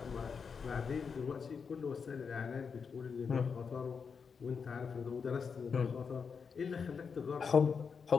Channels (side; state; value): right; quieter; 5.9 dB